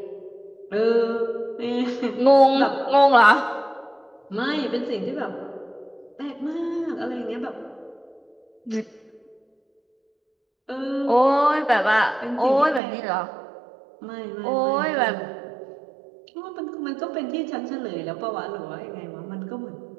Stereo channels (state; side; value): drops out; left; at 12.8 s